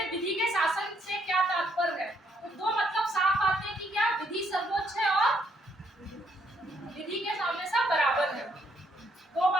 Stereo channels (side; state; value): both; normal; correlation 0.72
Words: विधि के शासन से क्या तात्पर्य है, तो दो मतलब साफ आते हैं कि क्या विधि सर्वोच्च है और विधि के सामने सब बराबर है। दो